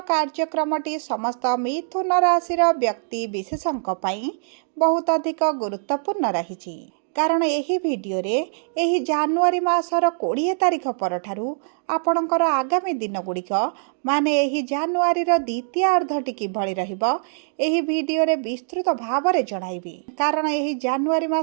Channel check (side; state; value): left; silent; digital silence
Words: कार्यक्रमटी समस्त मिथुन राशि व्यक्ति विशेषों बहुत अधिक गुरुत्वपूर्ण रही कारण यही वीडियो रे यही जनवरी मासर 20 तारिख परठारु आपणकर आगामी दिन गुड़िक माने यही जनवरी द्वितीय अर्धटी किभଳି रहिबो यही वीडियो रे विस्तृत भाव में जणाइबी। कारण यही जनवरी